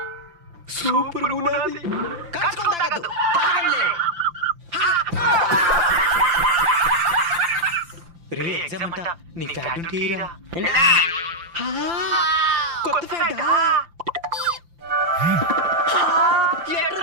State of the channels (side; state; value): left; late; 5.9 ms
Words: సూపర్ ఉన్నది. కలుసుకొని తాగద్దు, తాగండి. రే ఎగ్జామ్ అంట, నీ ఫ్యాట్ ఉంటే ఈరా. కొత్త ఫ్యాటా?